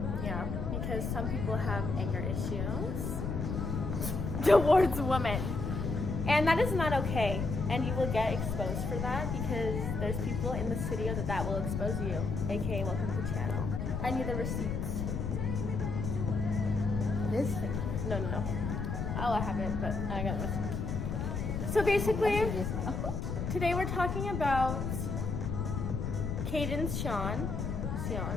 Yeah, because some people have anger issues towards women. And that is not okay. And you will get exposed for that because there's people in the studio that will expose you. AKA, welcome to the channel. I need the receipts. This thing? No. Oh, I have it, but I got it. So basically, today we're talking about KaydenSeon.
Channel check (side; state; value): left; noise; rumble, 2 dB below the sound